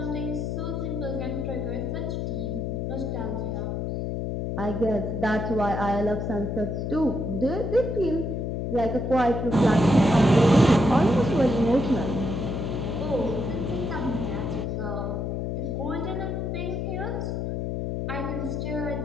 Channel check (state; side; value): noise; left; hum, 2 dB below the sound